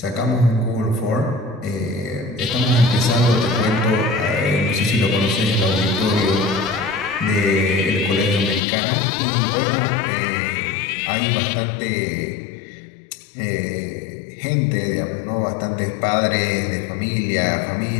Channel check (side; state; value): right; drops out; at 8.6 s